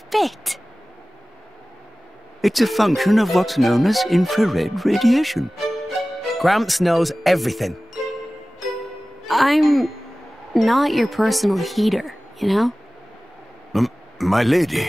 it. It's a function of what's known as infrared radiation. Gramps knows everything. I'm not your personal heater, you know? My lady,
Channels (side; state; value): both; normal; correlation 0.97